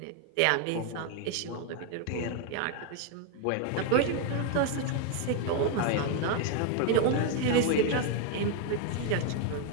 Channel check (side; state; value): both; different; correlation 0.01